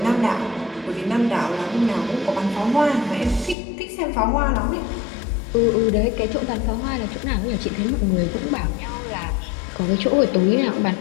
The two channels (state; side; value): drops out; right; at 3.6 s